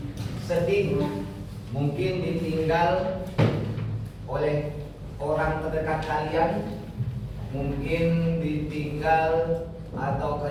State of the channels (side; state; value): both; identical; correlation 1.00